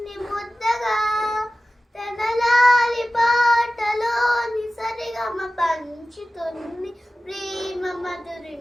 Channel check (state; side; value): normal; both; correlation 0.96